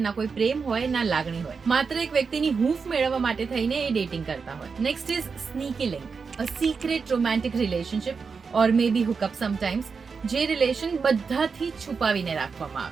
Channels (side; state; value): left; quieter; 5.3 dB